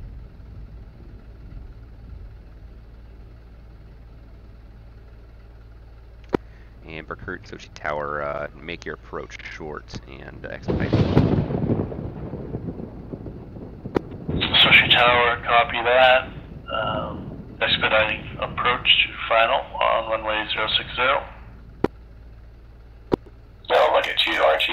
And Berkut, Sochi Tower, make your approach short and expedite. Sochi Tower, copy that. Expediting approach to final on runway 060. Oh, look at you, aren't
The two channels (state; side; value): identical; both; correlation 1.00